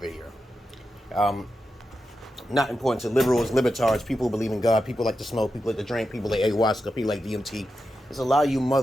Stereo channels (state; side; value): normal; both; correlation 0.89